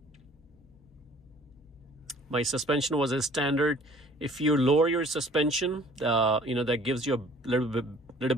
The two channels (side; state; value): both; normal; correlation 0.53